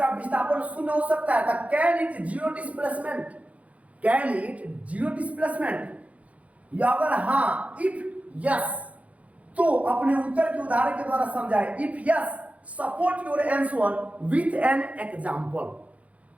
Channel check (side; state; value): left; late; 0.066 ms